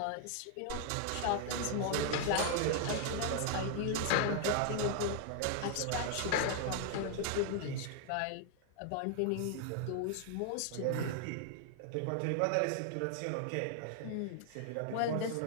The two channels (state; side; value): different; both; correlation 0.00